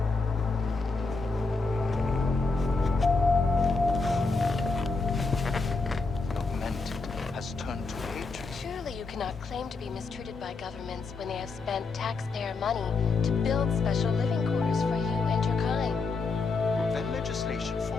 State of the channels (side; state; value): right; quieter; 4.0 dB